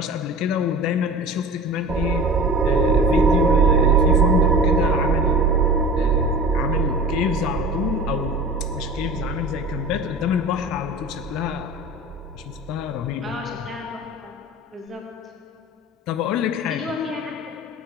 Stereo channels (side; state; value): both; normal; correlation 0.36